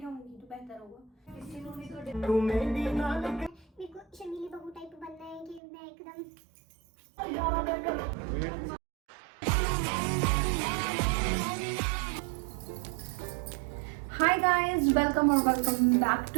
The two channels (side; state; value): left; drops out; at 5.6 s